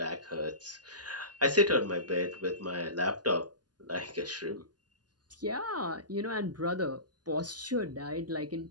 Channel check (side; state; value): left; late; 0.70 ms